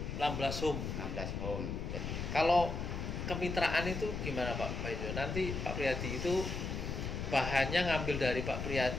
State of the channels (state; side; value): noise; left; rumble, 4 dB below the sound